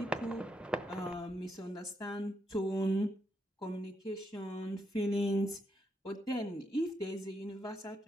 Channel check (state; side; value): normal; both; correlation 0.80